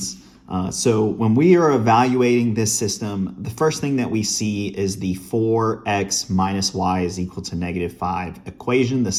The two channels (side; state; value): both; identical; correlation 1.00